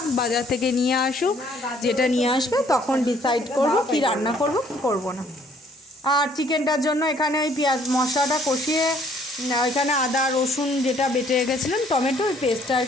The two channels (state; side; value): normal; both; correlation 0.62